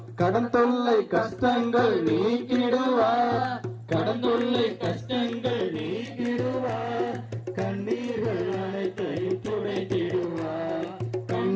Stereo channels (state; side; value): identical; both; correlation 1.00